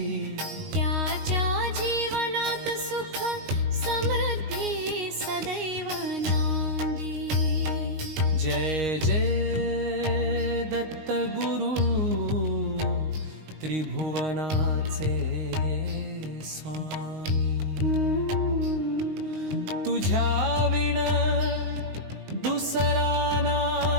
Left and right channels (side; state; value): left; late; 19 ms